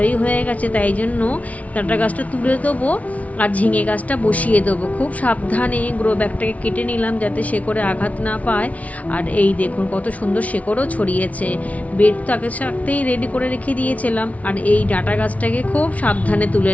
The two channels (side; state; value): right; late; 0.068 ms